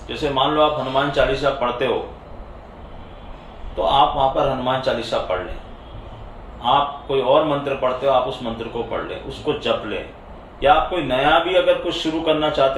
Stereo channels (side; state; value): both; identical; correlation 1.00